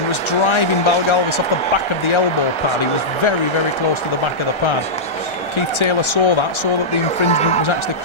was driving Balgalvis off the back of the elbow pad. He was very, very close to the back of the pad. Keith Taylor saw that the infringement was actually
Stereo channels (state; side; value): late; right; 1.3 ms